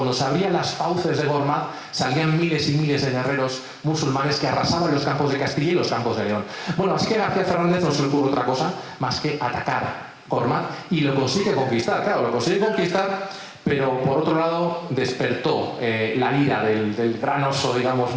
se abrían las fauces de Gormaz salían miles y miles de guerreros musulmanes que arrasaban los campos de Castilla y los campos de León. Bueno, así que García Fernández no se le ocurre otra cosa más que atacar Gormaz, y lo consigue conquistar, claro, lo consigue conquistar, pero por otro lado despertó la ira del gran oso, digamos,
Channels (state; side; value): identical; both; correlation 1.00